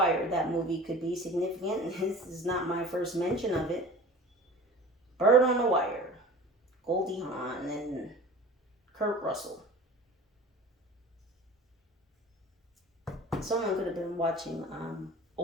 That movie could be significant. This is not my first mention of it. Bird on a Wire. Goldie Hawn and Kurt Russell. Someone could have been watching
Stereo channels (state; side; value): normal; both; correlation 0.40